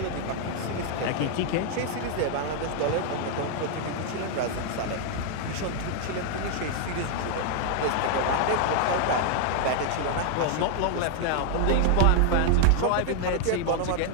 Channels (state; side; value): different; both; correlation 0.00